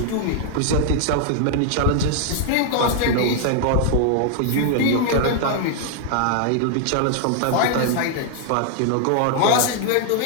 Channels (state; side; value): different; both; correlation 0.00